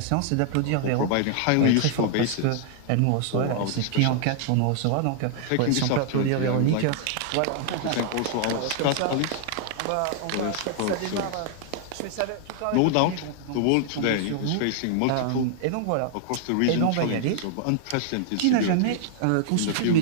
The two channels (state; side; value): different; both; correlation 0.00